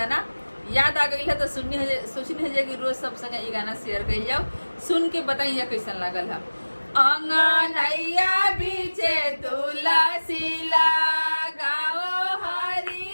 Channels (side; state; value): both; inverted; correlation -1.00